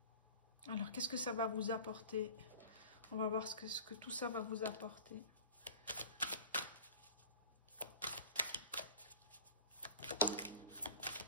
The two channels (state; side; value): inverted; both; correlation -0.42